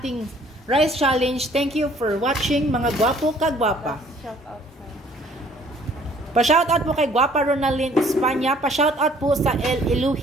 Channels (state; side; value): normal; both; correlation 0.58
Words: rice challenge. Thank you for watching, mga gwapo kagwapa. Pa-shoutout po kay Guapa Ronaldin Espanya. Pa-shoutout po sa El